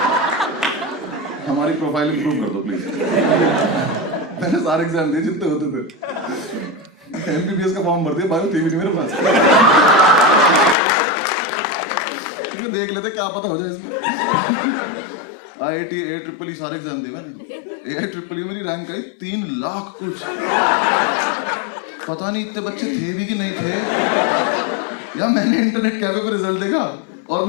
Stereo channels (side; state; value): right; drops out; at 10.8 s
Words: हमारी प्रोफाइल इंप्रूव कर दो प्लीज। मैंने सारे एग्जाम दिए जितने होते थे, एमबीबीएस का फॉर्म भर दिया, बायो थी भी नहीं मेरे पास। क्योंकि देख लेते क्या पता हो जाए इसमें। IIT AIEEE सारे एग्जाम दिए मैंने। AIEEE मेरी रैंक आई 3 लाख कुछ। पता नहीं इतने बच्चे थे भी कि नहीं थे, या मैंने इंटरनेट कैफे पे रिजल्ट देखा और